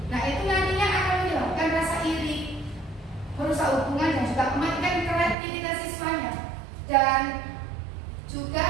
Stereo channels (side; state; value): left; drops out; at 5.4 s